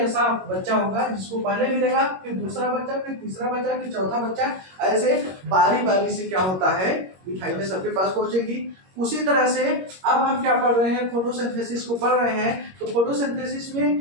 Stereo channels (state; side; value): late; left; 21 ms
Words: बच्चा होगा जिसको पहले मिलेगा, फिर दूसरा बच्चा, फिर तीसरा बच्चा, फिर चौथा बच्चा, ऐसे बारी बारी से क्या होता है, मिठाइयाँ सबके पास पहुंचेगी। उसी तरह से अब हम क्या पढ़ रहे हैं, फोटोसिंथेसिस को पढ़ रहे हैं। तो फोटोसिंथेसिस में